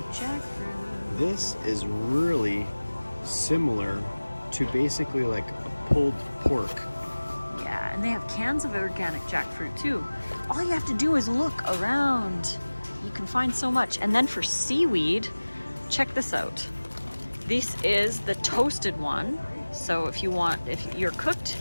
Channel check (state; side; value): inverted; both; correlation -1.00